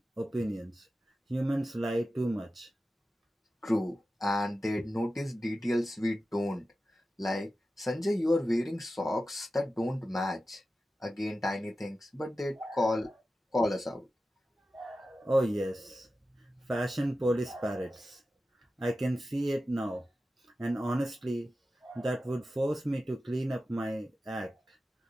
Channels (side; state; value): both; normal; correlation 0.93